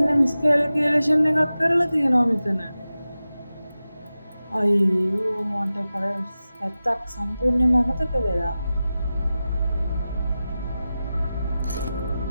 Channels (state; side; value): inverted; both; correlation -0.94